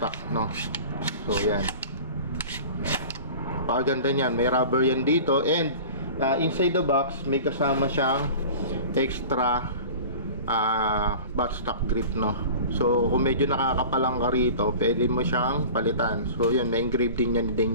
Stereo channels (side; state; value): both; inverted; correlation -0.38